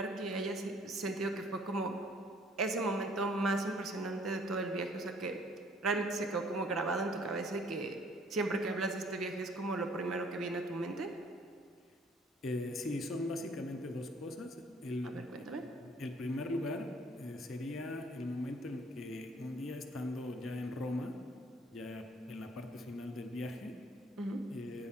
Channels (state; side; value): normal; both; correlation 0.58